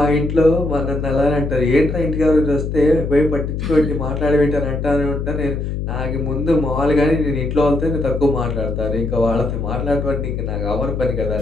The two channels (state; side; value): noise; left; hum, 3 dB below the sound